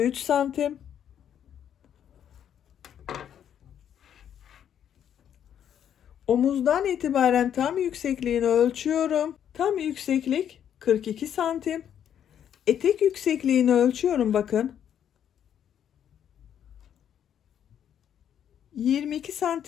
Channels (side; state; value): right; quieter; 9.4 dB